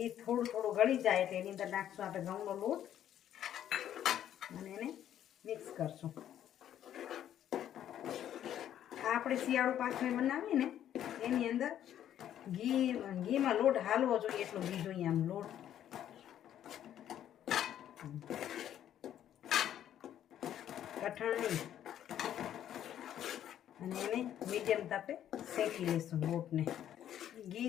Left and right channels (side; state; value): right; quieter; 10.8 dB